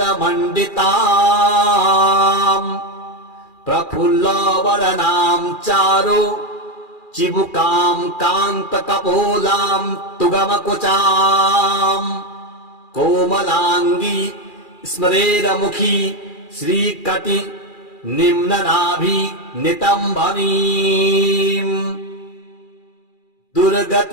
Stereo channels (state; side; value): late; right; 2.4 ms